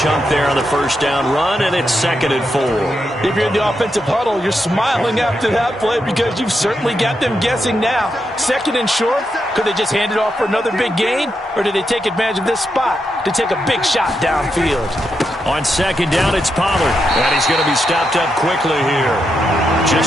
there on the first down run, and it's 2nd and 4. If you're in the offensive huddle, you're smiling after that play because you've certainly got them guessing now. 2nd and short, could they just hand it off for another big gain? Or did they take advantage of this spot to take a big shot downfield? On second down, it's Pollard. And he's going to be stopped up quickly here.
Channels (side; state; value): both; normal; correlation 0.84